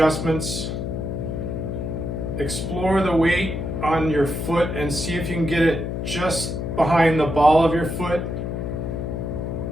Explore the weight on your foot and see if you can get it just behind the ball of your foot,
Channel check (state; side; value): noise; left; hum, 3 dB below the sound